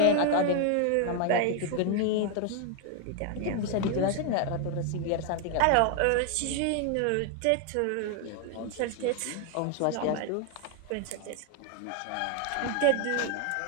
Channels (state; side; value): different; both; correlation 0.00